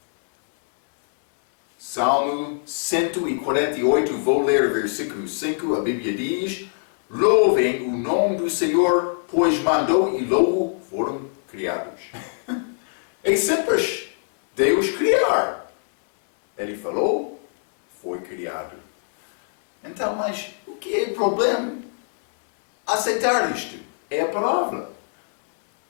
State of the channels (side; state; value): right; silent; 64 dB below the other